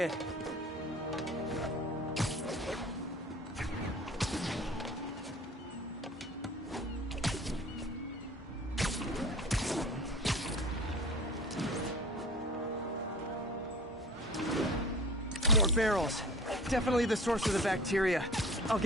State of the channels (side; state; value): both; normal; correlation 0.41